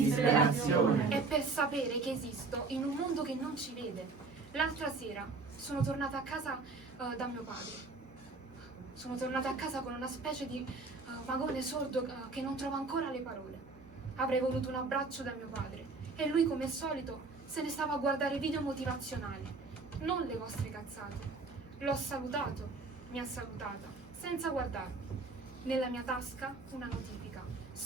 È per sapere che esisto in un mondo che non ci vede. L'altra sera sono tornata a casa da mio padre. Sono tornata a casa con una specie di vagone sordo che non trova ancora le parole. Avrei voluto un abbraccio da mio padre e lui, come al solito, se ne stava a guardare video motivazionali, non le vostre cazzate. L'ho salutato, mi ha salutata, senza guardarmi. Nella mia tasca una notifica.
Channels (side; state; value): left; quieter; 3.9 dB